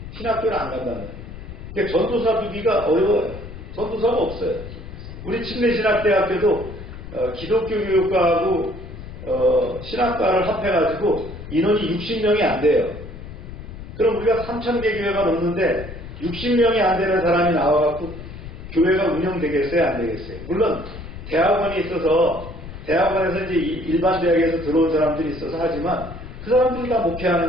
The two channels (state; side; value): noise; left; rumble, 12 dB below the sound